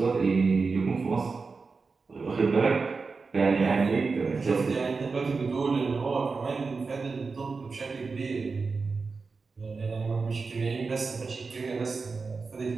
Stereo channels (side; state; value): left; quieter; 4.5 dB